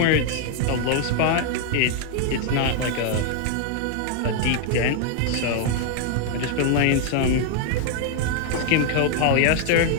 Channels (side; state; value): both; different; correlation 0.00